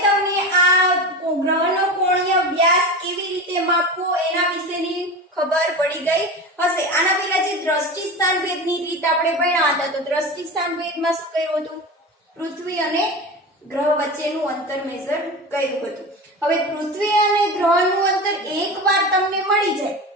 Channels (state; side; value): normal; both; correlation 0.28